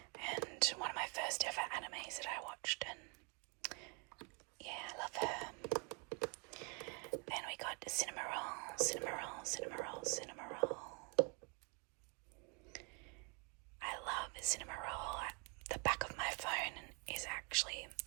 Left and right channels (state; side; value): quieter; left; 33.6 dB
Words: and one of my first ever animes that I watched, and I love her. Then we got Cinema Roll. I love Cinema Roll. The back of my phone is actually,